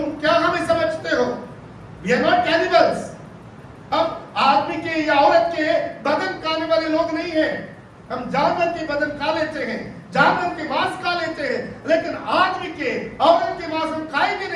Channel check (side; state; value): both; identical; correlation 1.00